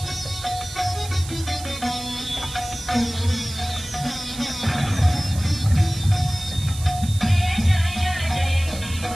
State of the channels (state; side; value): noise; right; hiss, 13 dB below the sound